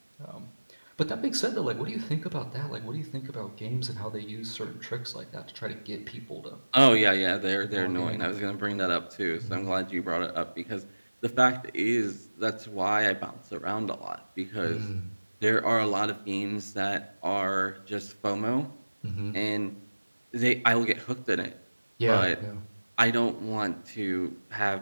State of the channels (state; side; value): inverted; both; correlation -1.00